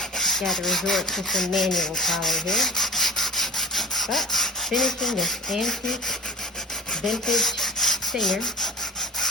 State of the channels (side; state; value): both; normal; correlation 0.38